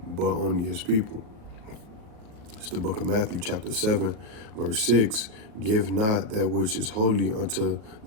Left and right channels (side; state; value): left; late; 38 ms